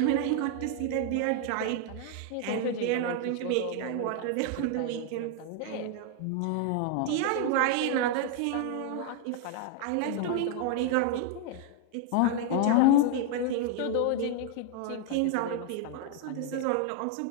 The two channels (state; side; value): different; both; correlation 0.00